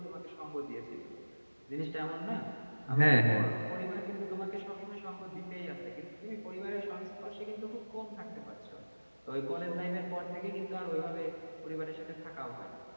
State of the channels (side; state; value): both; inverted; correlation -1.00